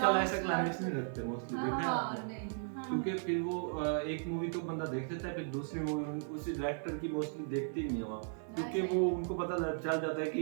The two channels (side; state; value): left; silent; 54 dB below the other